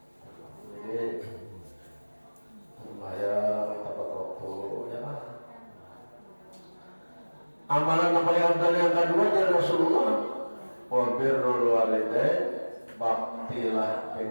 jadi sembahyang tepat waktu, ya. Amalan yang paling afdal yang kedua dari Rasulullah, wa birrul walidain, baktilah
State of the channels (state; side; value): inverted; both; correlation -1.00